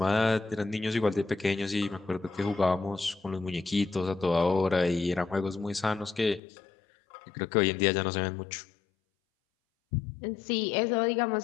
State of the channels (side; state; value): right; drops out; at 6.4 s